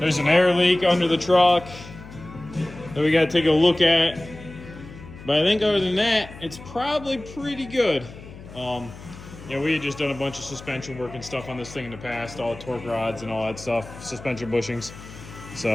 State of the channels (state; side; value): noise; left; hum, 16 dB below the sound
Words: an air leak under the truck that we got to take a look at. But I think other than that, it's probably pretty good. Yeah, we had just done a bunch of suspension work and stuff on this thing in the past, all the torque rods and all that stuff, suspension bushings.